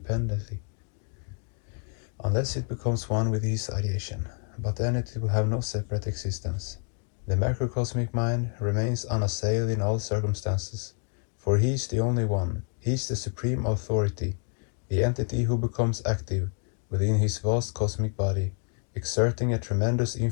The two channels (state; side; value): quieter; right; 39.3 dB